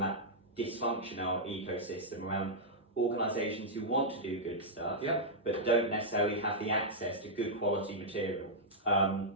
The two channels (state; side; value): normal; both; correlation -0.07